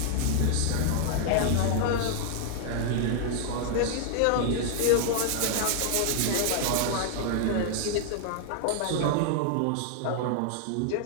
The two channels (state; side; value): different; both; correlation -0.01